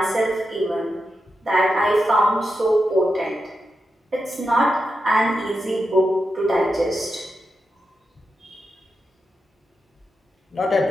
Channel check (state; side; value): normal; both; correlation 0.88